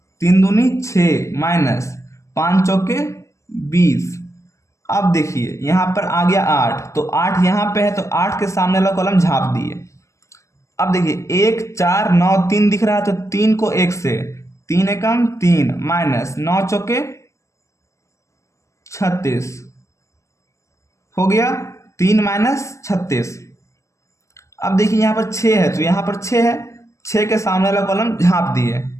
3 दूनी 6 माइनस 5 चौके 20। अब देखिए यहाँ पर आ गया 8, तो 8 यहाँ पे है तो 8 के सामने वाला कॉलम झाँप दिए। अब देखिए 1 4 9 3 दिख रहा है तो 3 को 1 से 3 एकम 3 माइनस 9 चौके 36 हो गया 3 माइनस 36। अब देखिए यहाँ पर 6 है तो यहाँ पर 6 है, 6 के सामने वाला कॉलम झाँप दिए,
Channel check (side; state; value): right; late; 0.15 ms